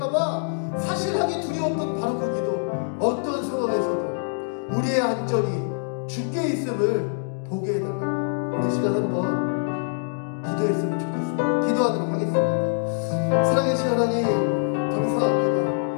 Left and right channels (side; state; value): right; silent; digital silence